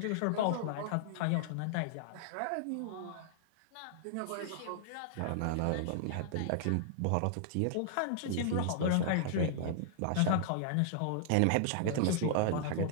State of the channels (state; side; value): different; both; correlation -0.01